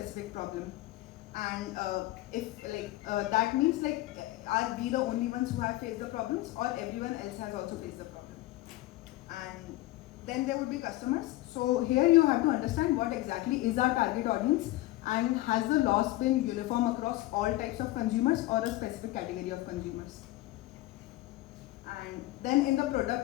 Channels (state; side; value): quieter; right; 17.5 dB